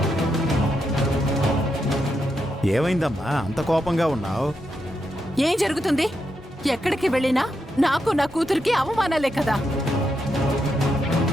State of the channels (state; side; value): normal; both; correlation 0.83